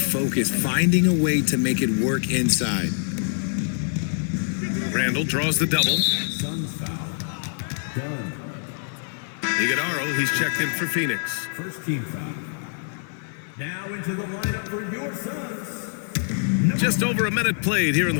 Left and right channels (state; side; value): silent; right; 56 dB below the other